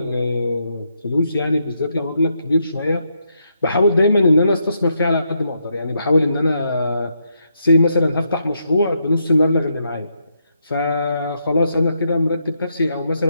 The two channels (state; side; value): inverted; both; correlation -0.79